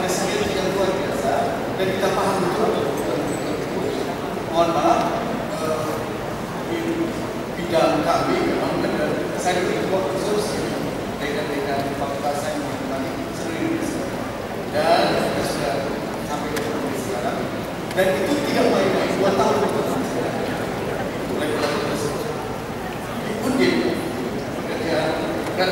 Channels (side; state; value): both; identical; correlation 1.00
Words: strategi yang luar biasa dan kita paham betul. Mohon maaf, kami memang benar. Saya berketua khusus dengan fakultas saya mengenai seluruh Indonesia. Dan kita sudah sampai ke Indonesia sekarang. Dan itu tidak main-main, 2 tahun itu mulai berlaku tersebut. Undip pekerjaan dan